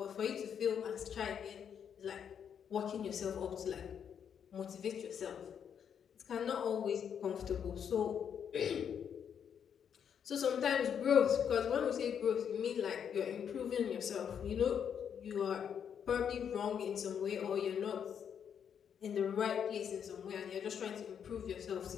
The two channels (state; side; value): quieter; right; 8.0 dB